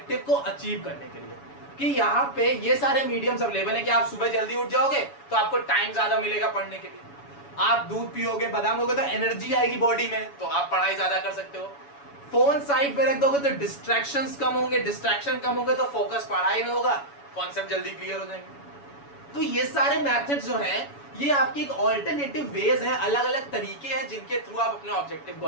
को अचीव करने के लिए, कि यहाँ पे ये सारे मीडियम्स अवेलेबल है कि आप सुबह जल्दी उठ जाओगे तो आपको टाइम ज्यादा मिलेगा पढ़ने के लिए। आप दूध पियोगे, बादाम होगे तो एनर्जी आएगी बॉडी में, तो आप पढ़ाई ज्यादा कर सकते हो। फोन साइड पे रख दोगे तो डिस्ट्रैक्शंस कम होंगे, डिस्ट्रैक्शन कम होंगे तो फोकस पढ़ाई में होगा, कॉन्सेप्ट जल्दी क्लियर हो जाएंगे। तो ये सारे मेथड्स जो हैं ये आपकी एक ऑल्टरनेटिव वेज है, अलग अलग तरीके हैं जिनके थ्रू आप अपने ऑब्जेक्टिव को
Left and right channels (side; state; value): right; late; 7.1 ms